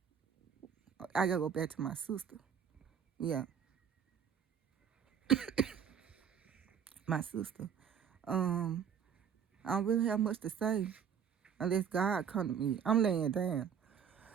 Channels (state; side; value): quieter; left; 7.7 dB